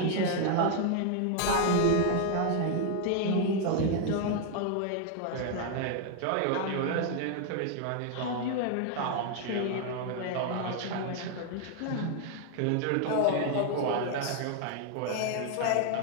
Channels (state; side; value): different; both; correlation 0.00